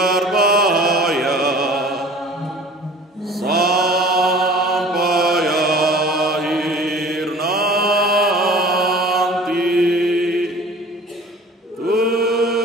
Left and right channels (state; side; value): normal; both; correlation 0.45